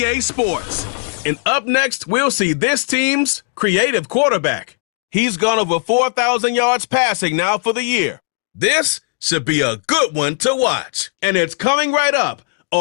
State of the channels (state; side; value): silent; right; digital silence